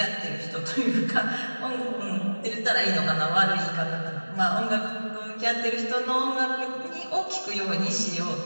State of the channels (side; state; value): both; inverted; correlation -1.00